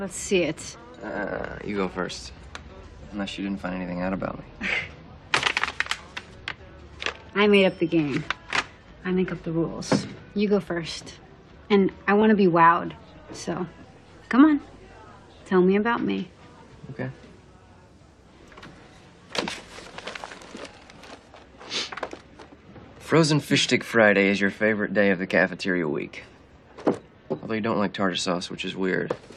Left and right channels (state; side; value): identical; both; correlation 1.00